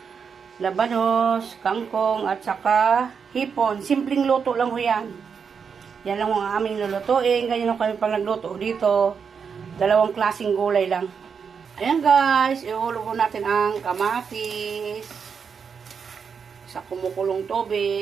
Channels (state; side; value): quieter; left; 6.3 dB